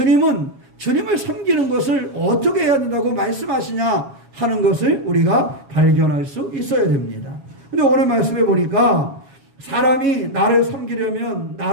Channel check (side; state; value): left; late; 7.3 ms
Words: 주님을 섬기는 것을 어떻게 해야 된다고 말씀하시냐 하는 것을 우리가 발견할 수 있어야 됩니다. 근데 오늘 말씀해 보니까 사람이 나를 섬기려면